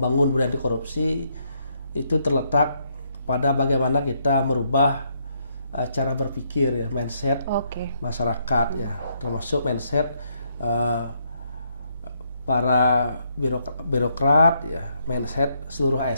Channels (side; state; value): both; inverted; correlation -0.74